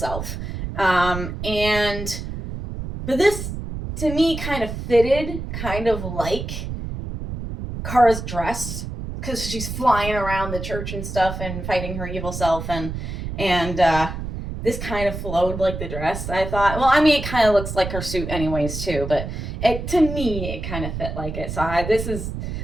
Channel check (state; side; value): noise; right; rumble, 6 dB below the sound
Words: But this to me kind of fitted, kind of like Kara's dress, because she's flying around the church and stuff and fighting her evil self, and this kind of flowed like the dress, I thought. Well, I mean, it kind of looks like her suit anyways, too, but to me, it kind of fit like it. So this is